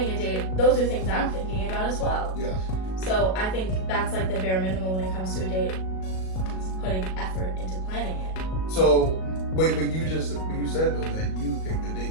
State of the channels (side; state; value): right; late; 37 ms